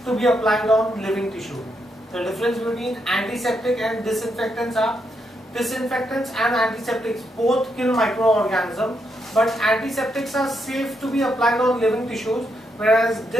to be applied on living tissue. The difference between antiseptic and disinfectants are disinfectants and antiseptics both kill microorganisms, but antiseptics are safe to be applied on living tissues, whereas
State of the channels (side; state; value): both; normal; correlation 0.80